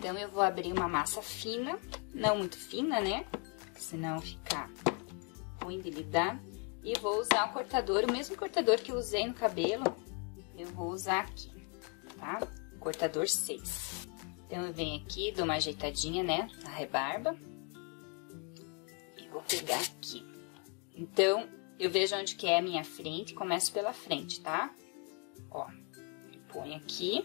eu vou abrir uma massa fina, não muito fina, né, porque senão fica ruim de lidar. E vou usar o cortador, o mesmo cortador que eu usei no cabelo, eu vou usar aqui, tá? Cortador 6. Então, eu venho aqui, dou uma ajeitadinha, né, na rebarba. E vou pegar aqui. Então, eu vejo onde que é a minha frente, começo pela frente, tá? Ó, ponho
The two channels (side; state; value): right; quieter; 36.7 dB